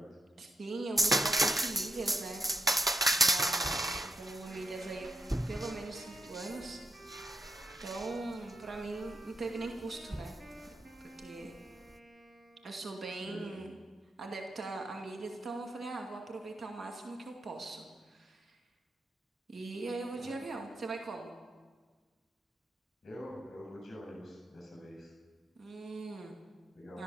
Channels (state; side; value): normal; both; correlation 0.82